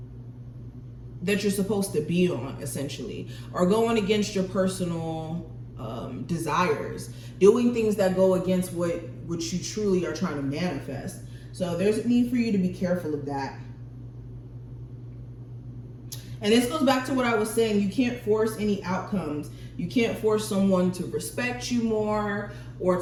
you're supposed to be on, essentially, or going against your personal desires, doing things that go against what you truly are trying to manifest. So there's a need for you to be careful of that. And this goes back to what I was saying. You can't force any outcomes. You can't force someone to respect you more, or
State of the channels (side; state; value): both; identical; correlation 1.00